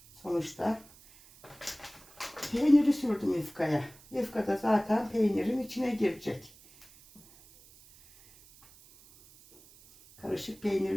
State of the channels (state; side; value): noise; right; hiss, 24 dB below the sound